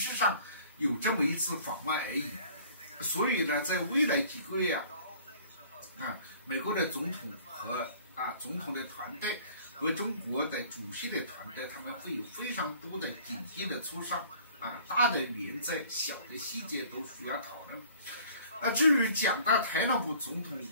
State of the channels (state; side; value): inverted; both; correlation -0.52